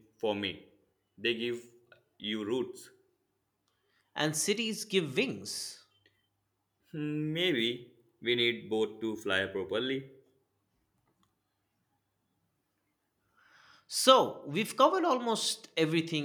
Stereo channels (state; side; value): identical; both; correlation 1.00